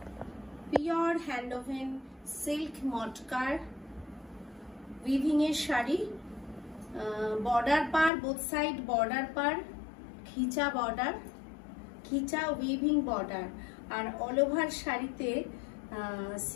pure hand woven silk মটকার উইভিং এর শাড়ি। বর্ডার পার, বোথ সাইড বর্ডার পার, খিচা উইভিং বর্ডার, আর অল ওভার শাড়িতে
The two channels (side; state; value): right; drops out; at 8.1 s